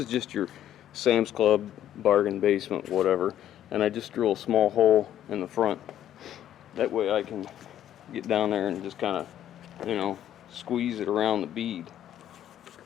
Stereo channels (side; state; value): right; quieter; 11.2 dB